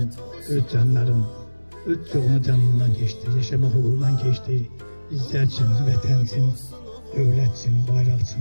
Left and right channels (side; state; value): both; inverted; correlation -1.00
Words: öz canların, öz çoğunu canından geçti, yaşama uğrundan geçti. Bizler için, vətən için, dövlət için, bayraq